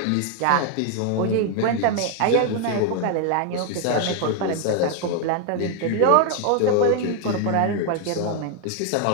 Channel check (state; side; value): different; both; correlation 0.00